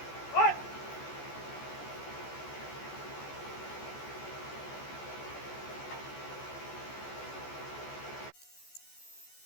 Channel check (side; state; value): right; late; 14 ms